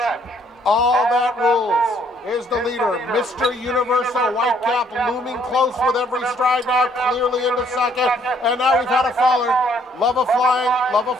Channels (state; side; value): normal; both; correlation 0.65